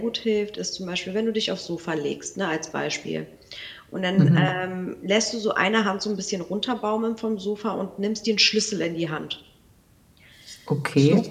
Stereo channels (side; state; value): both; identical; correlation 1.00